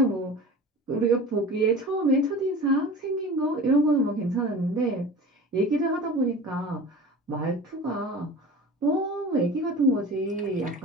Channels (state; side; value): normal; both; correlation 0.37